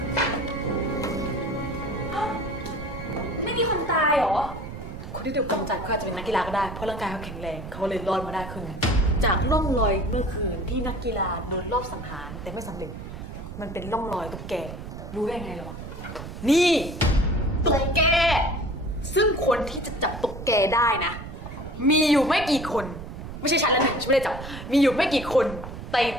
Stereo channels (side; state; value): right; noise; rumble, 10 dB below the sound